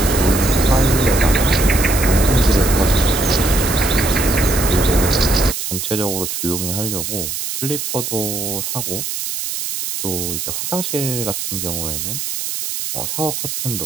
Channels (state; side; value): noise; right; hiss, 4 dB below the sound